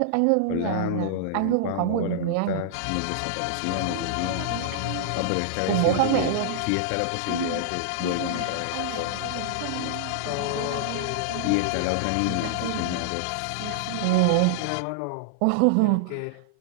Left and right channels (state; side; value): different; both; correlation -0.01